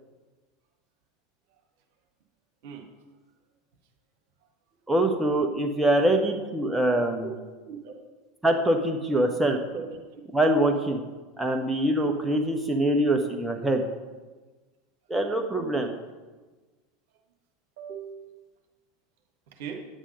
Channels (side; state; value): both; normal; correlation 0.58